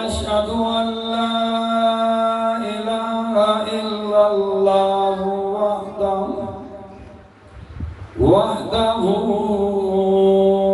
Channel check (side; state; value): both; identical; correlation 1.00